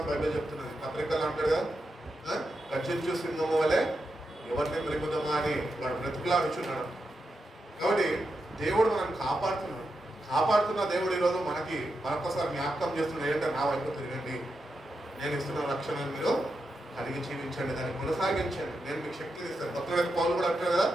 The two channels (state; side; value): normal; both; correlation 0.87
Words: బైబిల్ చెప్తున్నది. పత్రికలు అంటాడు కదా, గర్జించు సింహము వలె ఎవరిని మెరుగుతామా అని వాడు బ్రతుకులాడుచున్నాడు. కాబట్టి దేవుడు మనం కాపాడుతున్న దేవుడు ఈరోజు మనకి మరొకసారి జ్ఞాపకం చేస్తున్నాడు. ఏంటంటే నా వైపు తిరగండి, నేను ఇస్తున్న రక్షణను మీరు కలిగి జీవించండి, దాన్ని కొనసాగించండి, నేను మీకు శక్తిని ఇస్తాను. భక్తుడైన పౌలు కూడా అంటాడు కదా,